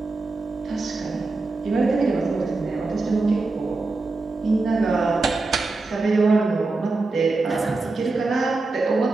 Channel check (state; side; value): quieter; left; 3.5 dB